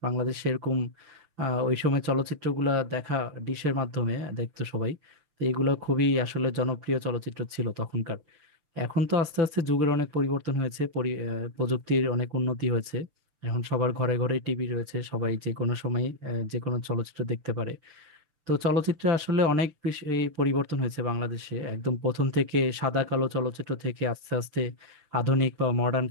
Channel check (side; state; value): left; late; 6.6 ms